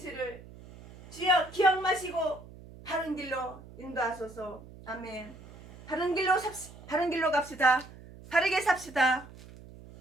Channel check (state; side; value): noise; right; hum, 19 dB below the sound